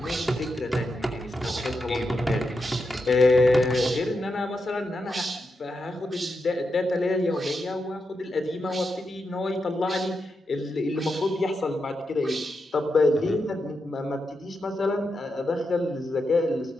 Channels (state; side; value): normal; both; correlation 0.86